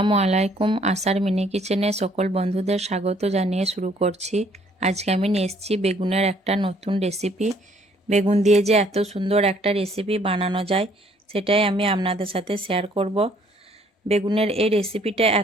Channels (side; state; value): both; normal; correlation 0.63